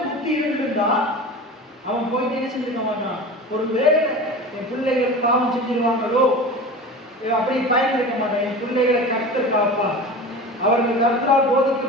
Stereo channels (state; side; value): normal; both; correlation 0.33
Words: புத்தி இருந்திருந்தா அவன் போயிட்டு என்ன செஞ்சிருக்க மாட்டான். ஒரு வேலை என் பிள்ளைகள் பாவம் செஞ்சிருவாங்களோ அப்படி பயன் இருக்க மாட்டான். என் பிள்ளைகளை கர்த்தர் காப்பா, அவர்கள் கர்த்தரால்